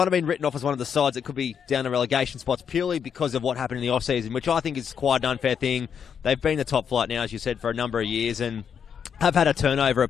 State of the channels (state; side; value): quieter; right; 7.5 dB